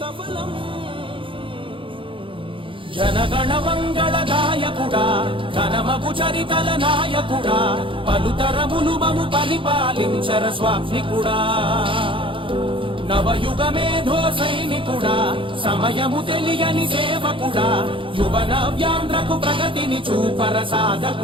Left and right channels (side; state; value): left; late; 0.25 ms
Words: జనగణ మంగళ గాయకుడా ఘనమగు చరితల నాయకుడా పలుతరములు మము పరిపాలించర స్వామికుడా. నవయుగ మేధో సైనికుడా సమయము తెలియని సేవకుడా యువన వ్యాంధ్రకు ప్రగతిని చూపర